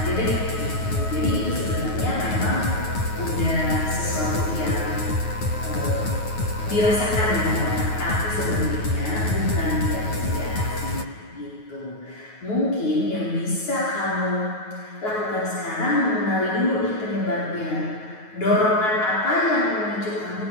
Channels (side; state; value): right; late; 9.4 ms